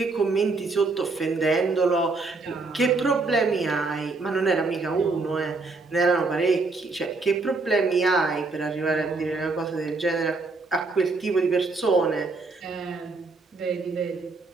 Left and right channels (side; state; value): left; quieter; 3.7 dB